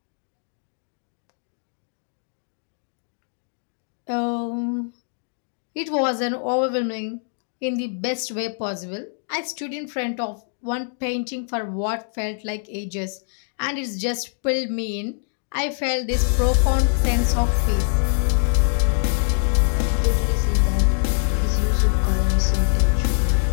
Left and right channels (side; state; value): right; silent; 63 dB below the other